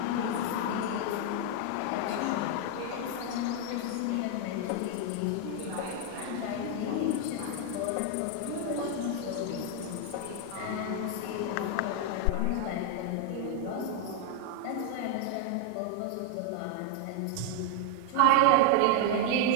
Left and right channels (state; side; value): different; both; correlation 0.00